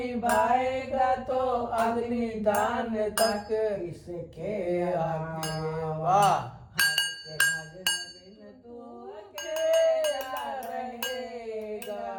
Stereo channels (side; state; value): both; identical; correlation 1.00